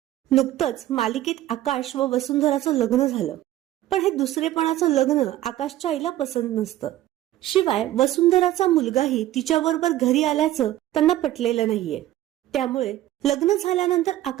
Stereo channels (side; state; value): left; quieter; 14.2 dB